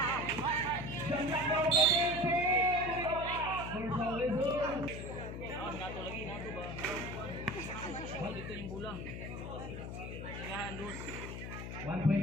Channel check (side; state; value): left; noise; hum, 7 dB below the sound